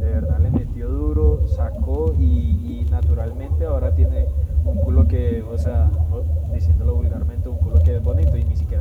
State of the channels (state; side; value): identical; both; correlation 1.00